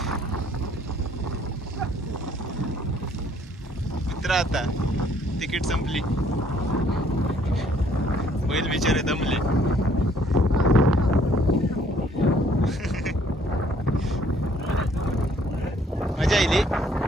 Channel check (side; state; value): both; normal; correlation 0.63